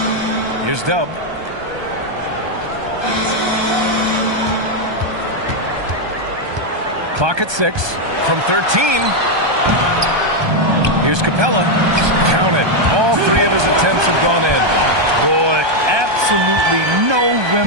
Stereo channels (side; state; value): left; late; 1.2 ms